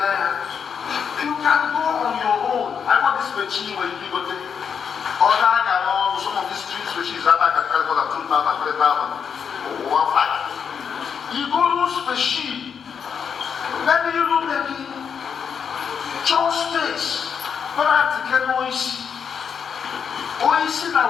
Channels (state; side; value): quieter; right; 7.0 dB